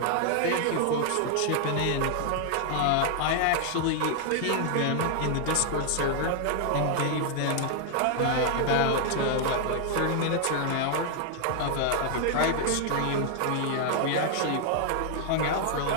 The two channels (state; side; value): different; both; correlation 0.00